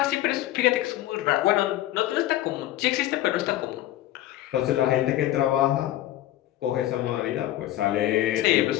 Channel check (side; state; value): right; quieter; 14.5 dB